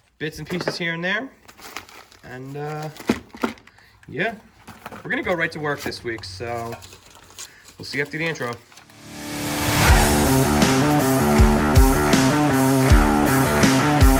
Bits and pieces here and there. And, yeah, we're gonna go right to work this week, so we'll see you after the intro.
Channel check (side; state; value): both; identical; correlation 1.00